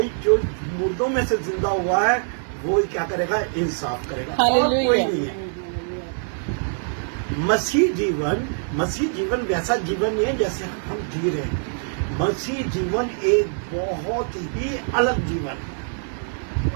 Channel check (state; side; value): silent; left; digital silence